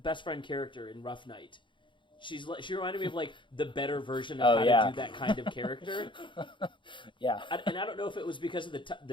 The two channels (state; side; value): late; right; 0.23 ms